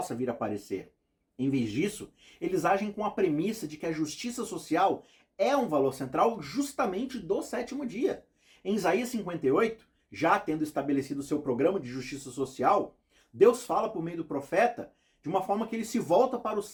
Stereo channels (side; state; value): both; identical; correlation 1.00